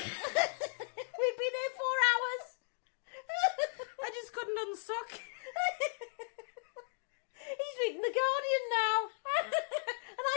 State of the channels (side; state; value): right; silent; digital silence